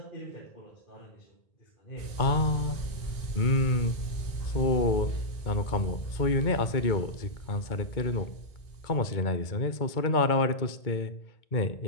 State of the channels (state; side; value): late; right; 2.2 ms